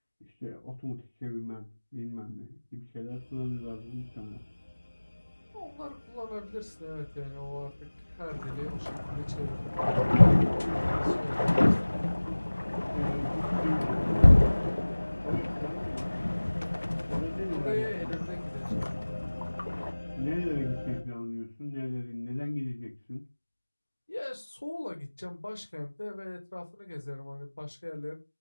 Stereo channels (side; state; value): both; inverted; correlation -1.00